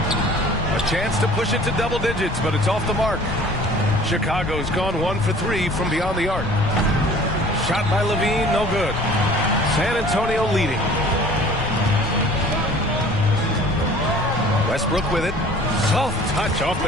chance to push it to double digits, but it's off the mark. Chicago's gone 1 for 3 from beyond the arc. Shot by Levine, no good. San Antonio leading. Westbrook with it. Soft touch off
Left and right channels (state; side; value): noise; left; rumble, 10 dB below the sound